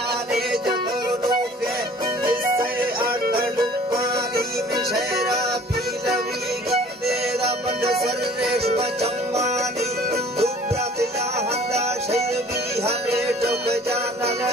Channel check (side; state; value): both; normal; correlation 0.51